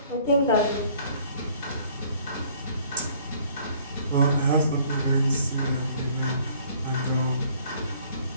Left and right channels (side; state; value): both; inverted; correlation -0.57